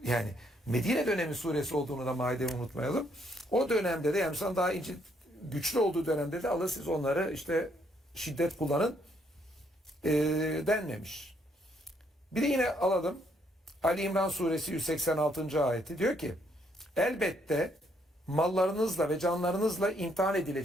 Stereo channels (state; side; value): normal; both; correlation 0.71